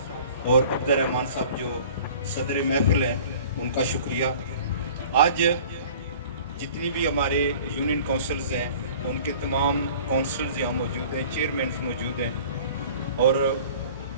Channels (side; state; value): both; inverted; correlation -0.47